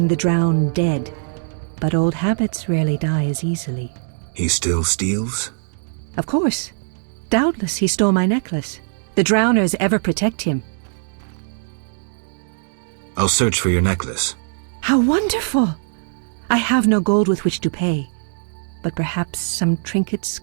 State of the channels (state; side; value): silent; left; 65 dB below the other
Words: the drowned dead, but old habits rarely die as easily. He still steals? Of course. Doubtless he stole my necklace. The drowners ever protect him. I'll search for your necklace. How wonderful! I have no gold with which to pay, but perhaps some trinkets